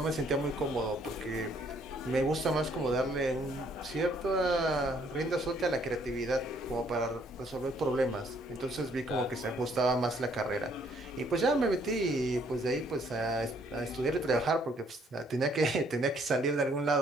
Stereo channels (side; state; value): both; normal; correlation 0.65